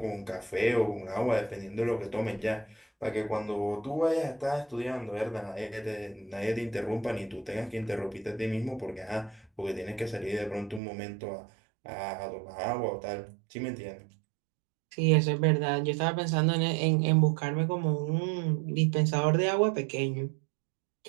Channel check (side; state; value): left; drops out; at 10.8 s